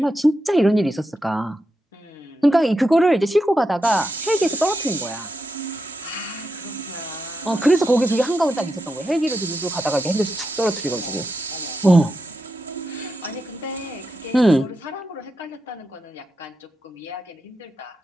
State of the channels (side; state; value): both; normal; correlation 0.86